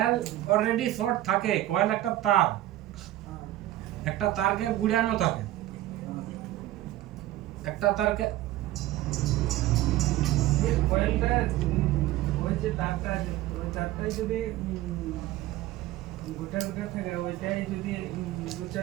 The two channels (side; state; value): left; quieter; 15.2 dB